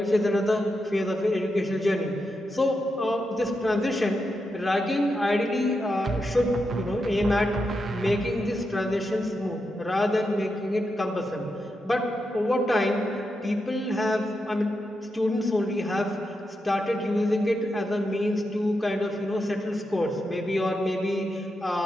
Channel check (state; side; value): normal; both; correlation 0.86